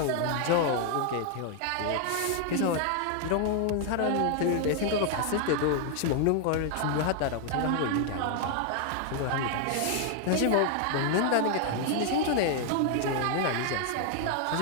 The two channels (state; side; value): different; both; correlation 0.00